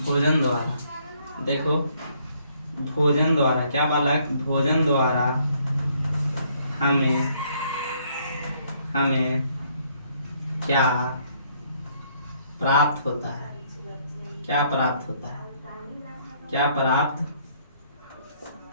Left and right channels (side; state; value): both; inverted; correlation -0.67